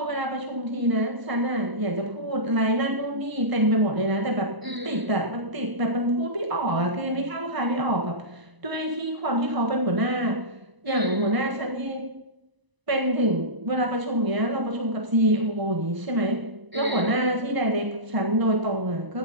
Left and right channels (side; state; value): left; late; 1.0 ms